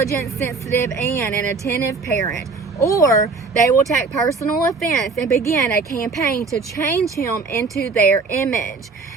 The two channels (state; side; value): quieter; left; 4.3 dB